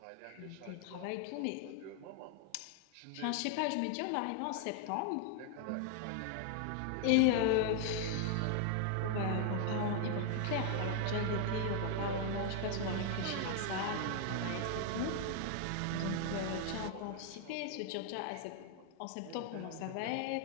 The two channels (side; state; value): both; different; correlation 0.00